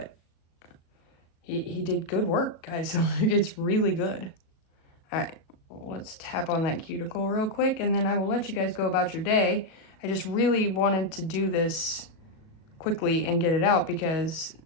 he did good work, guys. It's really good. All right, let's tap on that cuticle real quick, and then I will let you guys go about your day. I just really wanted to do this quickly and get it out because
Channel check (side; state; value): right; late; 37 ms